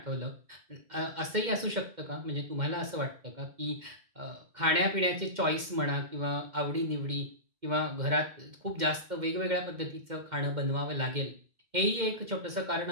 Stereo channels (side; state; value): left; late; 2.1 ms